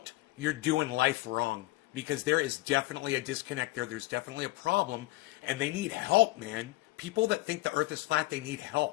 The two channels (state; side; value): quieter; right; 19.9 dB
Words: you're doing life wrong, because there is definitely a disconnect there. There's definitely a problem, and they need help, man. People that think the earth is flat, they need